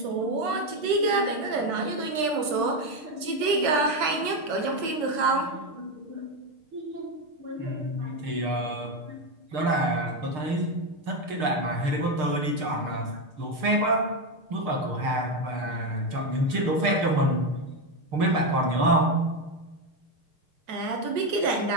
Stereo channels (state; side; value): late; left; 6.5 ms